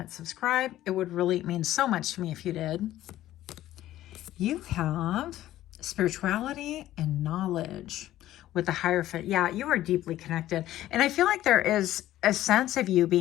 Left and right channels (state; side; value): quieter; right; 14.0 dB